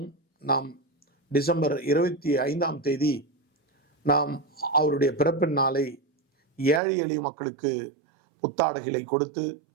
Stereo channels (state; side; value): drops out; left; at 6.8 s